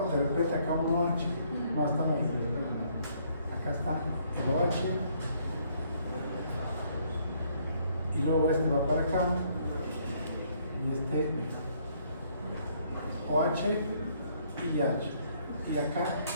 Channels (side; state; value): both; inverted; correlation -0.67